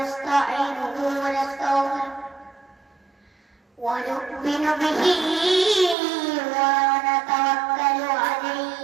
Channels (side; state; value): left; drops out; at 6.0 s